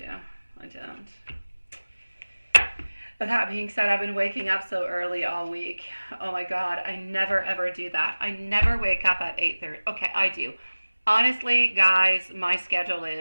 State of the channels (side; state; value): both; inverted; correlation -1.00